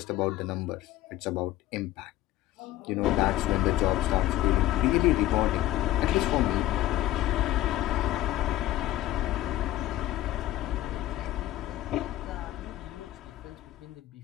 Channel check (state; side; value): quieter; right; 14.8 dB